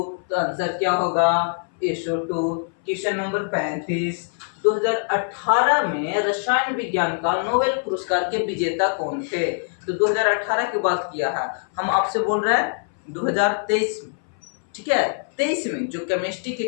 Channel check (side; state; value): right; silent; 60 dB below the other